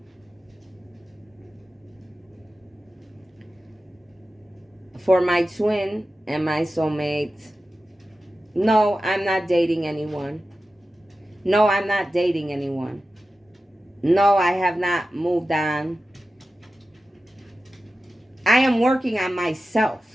For my twin and my soulmate, no, I'm not dating anyone. No, I'm not dating anyone. No, I have not moved on. I am working on myself.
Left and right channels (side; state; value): both; normal; correlation 0.94